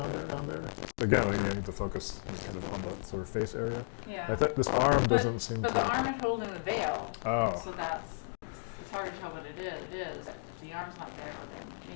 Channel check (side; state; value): right; silent; digital silence